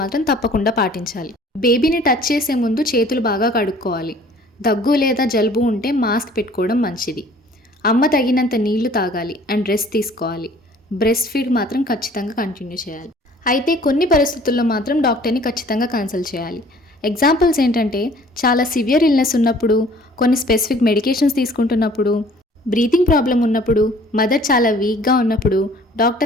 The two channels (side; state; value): both; normal; correlation 0.53